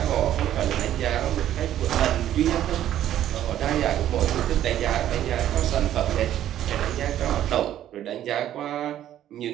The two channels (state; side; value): quieter; left; 11.8 dB